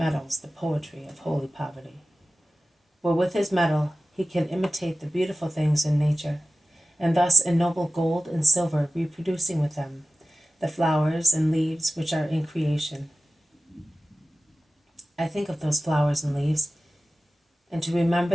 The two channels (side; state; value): both; normal; correlation 0.95